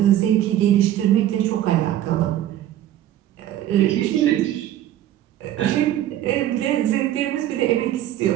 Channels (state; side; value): quieter; left; 12.4 dB